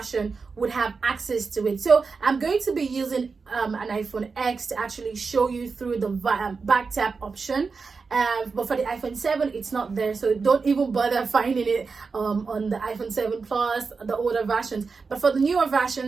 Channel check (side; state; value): left; quieter; 4.8 dB